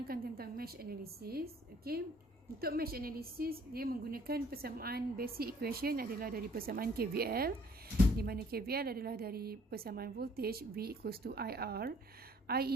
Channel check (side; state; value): both; normal; correlation 0.59